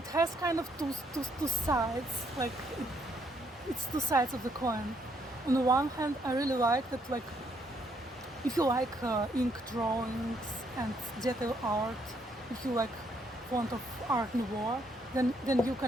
has kind of two sides. Like it's two sides of the coin. On the one hand, I really like that. Like, if you like ink drawings and detail art, if you like font of Art Nouveau, then you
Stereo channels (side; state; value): both; normal; correlation 0.72